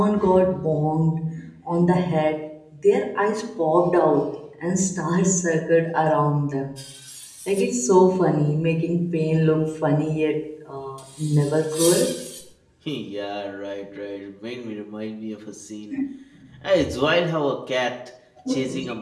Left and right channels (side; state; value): both; identical; correlation 1.00